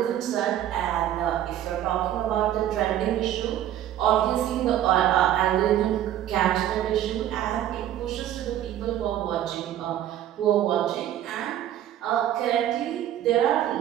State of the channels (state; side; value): quieter; left; 11.8 dB